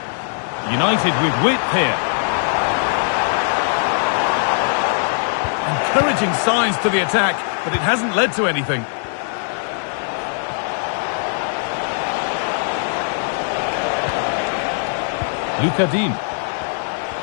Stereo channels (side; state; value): right; silent; 66 dB below the other